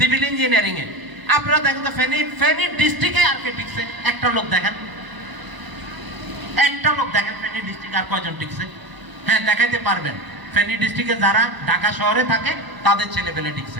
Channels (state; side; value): late; left; 1.0 ms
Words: ইঞ্জিনিয়ারিং এ। আপনারা দেখেন তো ফেনী ডিস্ট্রিক্টে আর কে টিকছে? একটা লোক দেখেন, একটা লোক দেখেন ফেনী ডিস্ট্রিক্টে আর কয়জন টিকছে? হ্যাঁ, দেখাইতে পারবেন। ফেনী ডিস্ট্রিক্টে যারা ঢাকা শহরে থাকে তাদের ছেলে পেলে